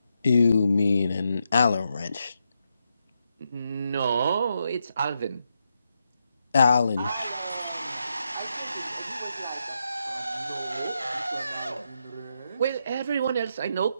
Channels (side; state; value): both; inverted; correlation -0.83